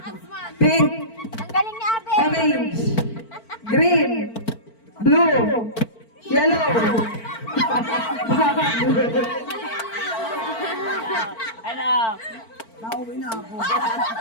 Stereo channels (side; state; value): right; late; 4.5 ms